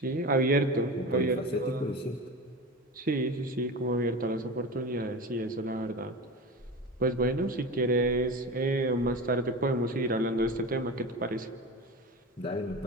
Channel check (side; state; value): both; normal; correlation 0.28